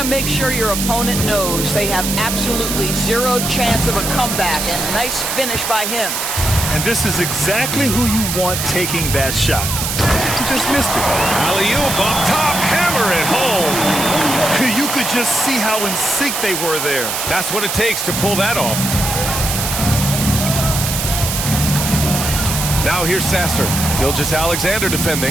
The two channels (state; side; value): noise; right; hiss, 2 dB below the sound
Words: to make sure your opponent knows they have absolutely zero chance of a comeback, and nice finish by him. And this is exactly who you want taking that shot. He just missed it. Alley-oop up top, hammer it home. You could just see how in sync they were there. That's what it takes to pull that off. Now here's Sasser. Gilgeous-Alexander